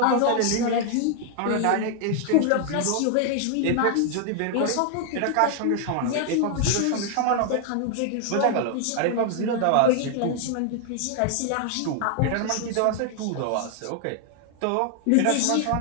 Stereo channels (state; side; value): different; both; correlation 0.00